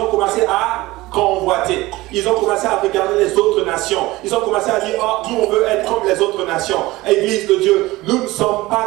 ont commencé à convoiter. Ils ont commencé à regarder les autres nations. Ils ont commencé à dire, oh, nous on veut être comme les autres nations. Église de Dieu, nous ne sommes pas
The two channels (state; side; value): quieter; left; 19.4 dB